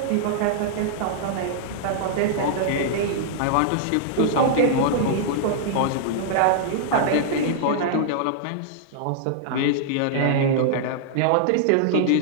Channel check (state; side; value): different; both; correlation -0.01